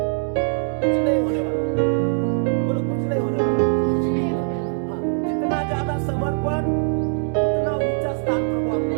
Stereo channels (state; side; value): silent; left; digital silence